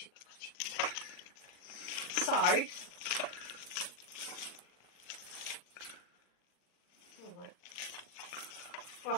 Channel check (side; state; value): right; late; 40 ms